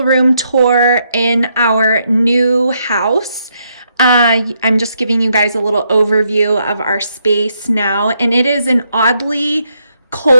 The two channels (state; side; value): inverted; both; correlation -0.77